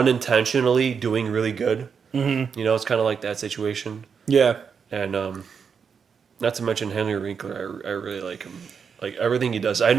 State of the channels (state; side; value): quieter; left; 6.4 dB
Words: doing really good. Mm-hmm. It's kind of like that situation. Yeah, and not to mention Henry Winkler, I really like him. Like everything he does, I